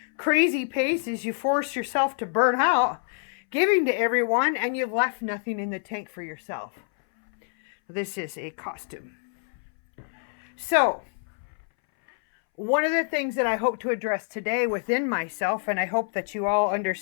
crazy paces. You force yourself to burn out, giving to everyone, and you've left nothing in the tank for yourself. This is a costume. So, one of the things that I hope to address today within myself, and I hope that you all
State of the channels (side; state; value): right; silent; 61 dB below the other